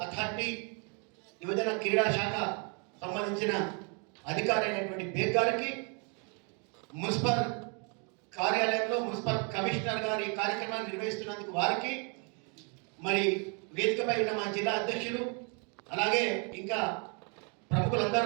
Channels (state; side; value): quieter; left; 36.1 dB